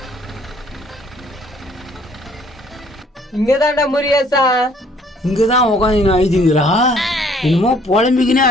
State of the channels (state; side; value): normal; both; correlation 0.60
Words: இங்கதான்டா முருகேசா. இங்கதான் உட்காந்து ஆயிடுங்கிறா. என்னமோ புலம்பிக்கினே